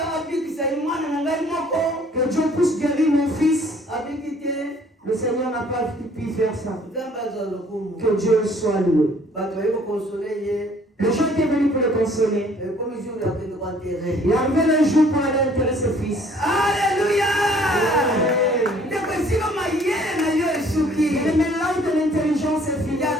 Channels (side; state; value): both; normal; correlation 0.58